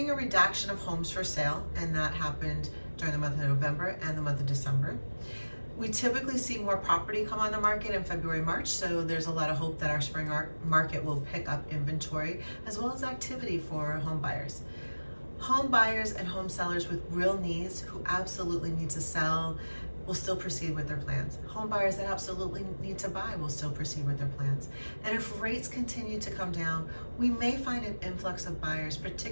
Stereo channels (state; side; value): inverted; both; correlation -1.00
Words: a reduction of homes for sale, and that happened during the month of November and the month of December. We typically see more property come on the market in February, March, so there's a lot of hope that our spring market will pick up inventory as well as activity for home buyers. Home buyers and home sellers with real needs who absolutely need to sell will still proceed with their plans. Home buyers that absolutely need to buy will still proceed with their plans. And if rates continue to come down, we may find an influx of buyers,